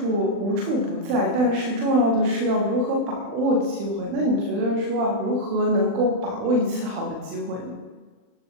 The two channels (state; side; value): late; left; 40 ms